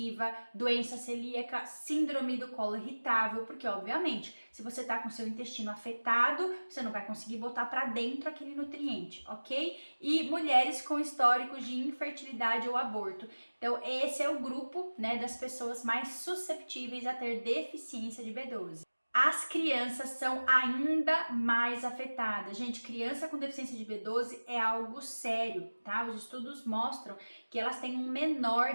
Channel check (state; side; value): inverted; both; correlation -1.00